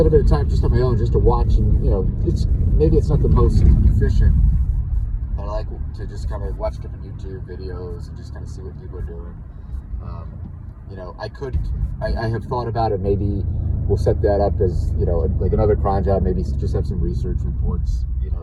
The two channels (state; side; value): identical; both; correlation 1.00